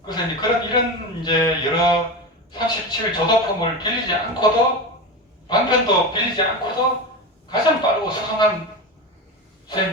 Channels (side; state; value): both; normal; correlation 0.22